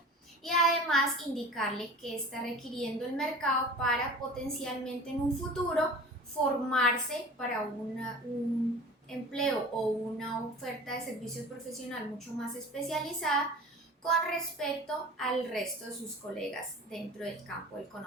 y además indicarle que está requiriendo el mercado para potencialmente en un futuro formarse para un empleo o una oferta de servicios profesional mucho más especializada con respecto al resto de sus colegas dentro del campo del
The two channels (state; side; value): normal; both; correlation 0.39